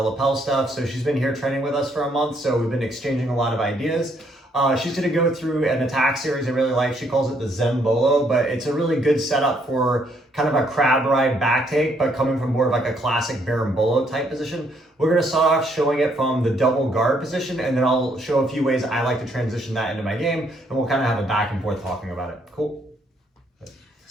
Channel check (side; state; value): both; normal; correlation 0.70